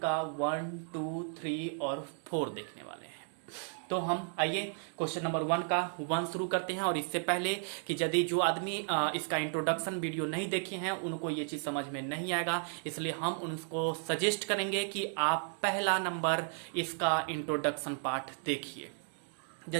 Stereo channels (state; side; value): silent; left; 55 dB below the other